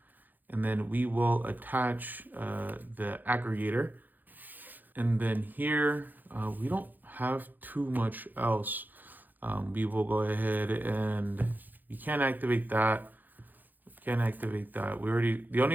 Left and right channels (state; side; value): late; left; 0.086 ms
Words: And then we will attach the Aggregator. And then here, we don't have too much else. We will go ahead and we can't activate that. Can't activate that. The